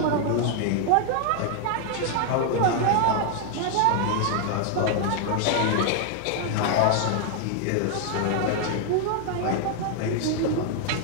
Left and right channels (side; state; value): both; different; correlation 0.00